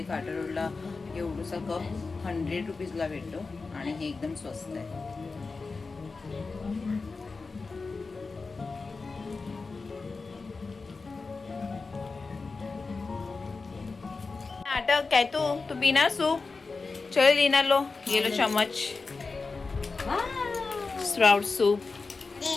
काटा रोडला एवढूसा कप 100 रुपीजला भेटतो आणि हे एकदम स्वस्त आहे. नाटक काय तू पीना सूप. चल लीना लो ये लो चम्मच. Sprout soup.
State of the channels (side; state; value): right; quieter; 4.1 dB